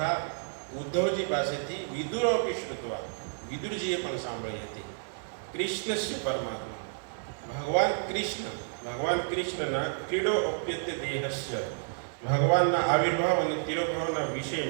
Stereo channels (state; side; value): silent; left; digital silence